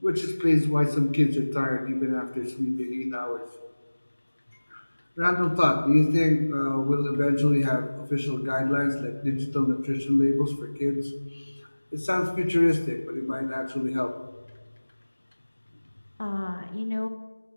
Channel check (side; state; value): both; inverted; correlation -1.00